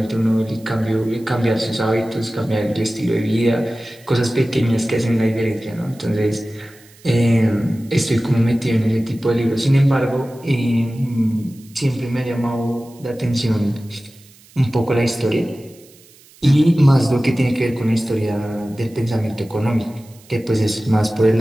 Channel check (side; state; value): right; noise; hiss, 26 dB below the sound